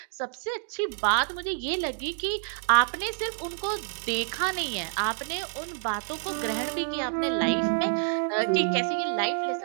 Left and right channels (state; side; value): silent; left; 55 dB below the other